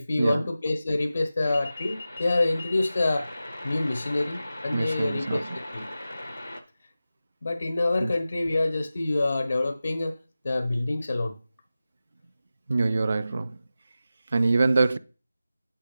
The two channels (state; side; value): inverted; both; correlation -0.94